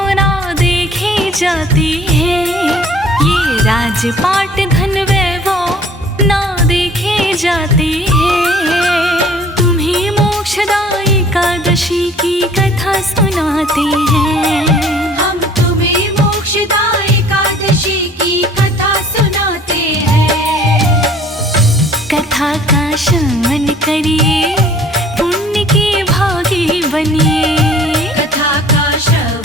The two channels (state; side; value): normal; both; correlation 0.53